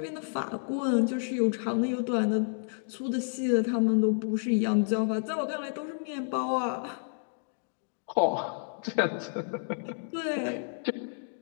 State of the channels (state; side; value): silent; right; digital silence